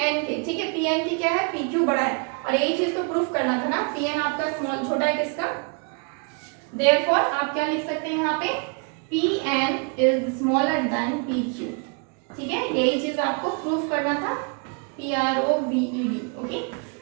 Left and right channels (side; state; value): left; quieter; 37.6 dB